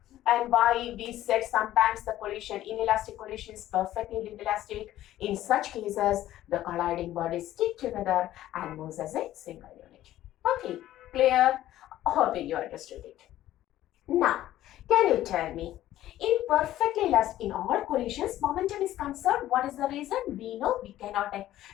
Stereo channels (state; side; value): quieter; right; 13.7 dB